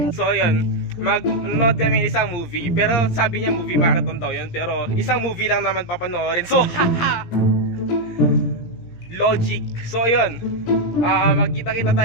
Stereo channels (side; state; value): right; late; 17 ms